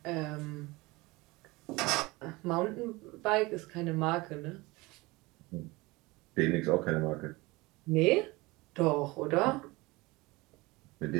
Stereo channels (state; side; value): quieter; left; 22.7 dB